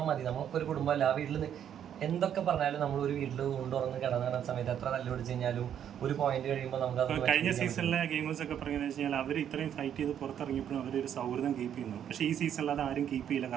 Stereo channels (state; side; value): quieter; left; 9.5 dB